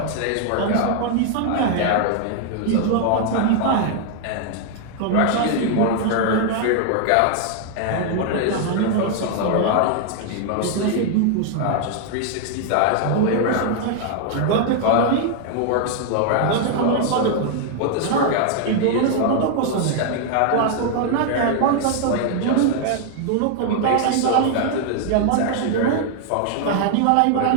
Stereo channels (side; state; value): both; different; correlation 0.00